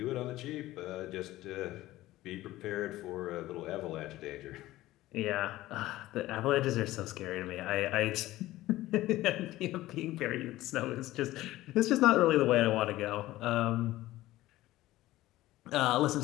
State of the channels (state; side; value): quieter; right; 16.4 dB